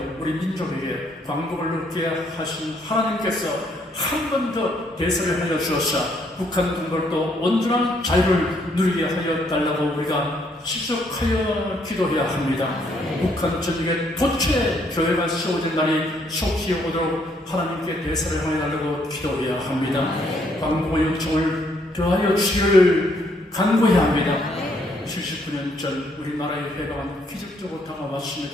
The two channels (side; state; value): both; normal; correlation 0.69